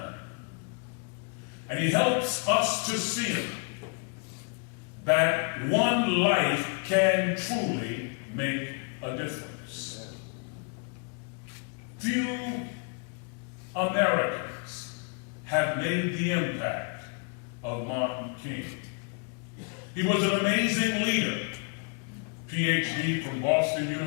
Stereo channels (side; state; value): right; quieter; 38.1 dB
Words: And he helps us to see that one life can truly make a difference. Few Americans have made the impact of Martin King. He was an amazing leader. PhD from Boston